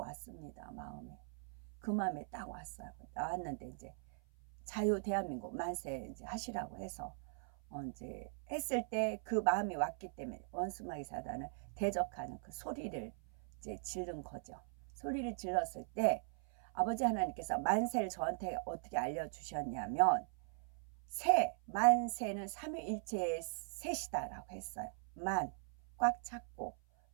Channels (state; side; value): silent; left; 51 dB below the other